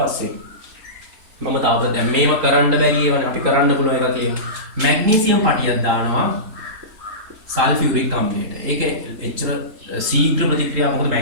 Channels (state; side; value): late; left; 3.8 ms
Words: මම තාවර දැන් මේව කරන්න බැරි ඒවනේ අපි කරන්න පුළුවන් එකක් කියමු. මැග්නීසියම් පටියක් දානවා සල්ෆියුරික් අම්ලයට. ඒක එච්චර ශීඝ්‍ර ප්‍රතික්‍රියාවක්. මොකද